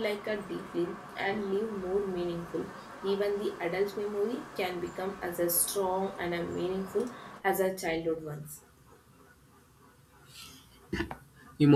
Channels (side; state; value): both; identical; correlation 1.00